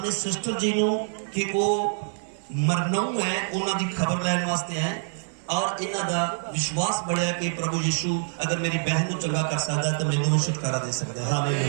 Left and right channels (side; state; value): left; silent; digital silence